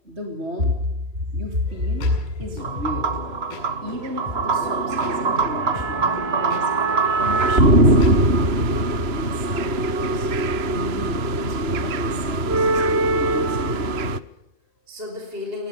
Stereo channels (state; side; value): late; left; 2.9 ms